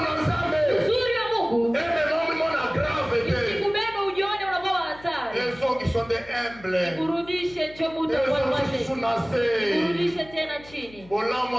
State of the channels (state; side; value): noise; left; hum, 22 dB below the sound